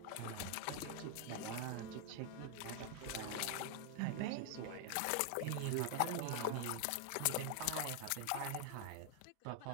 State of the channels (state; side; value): different; both; correlation 0.00